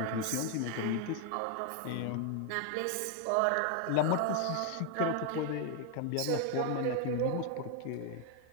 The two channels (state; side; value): different; both; correlation 0.00